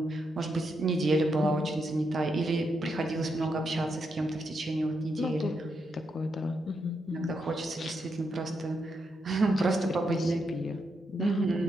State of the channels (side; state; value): both; normal; correlation 0.82